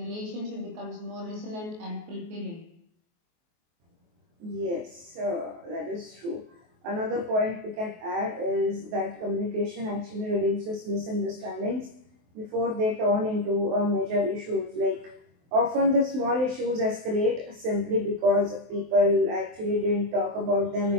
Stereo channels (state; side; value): late; left; 23 ms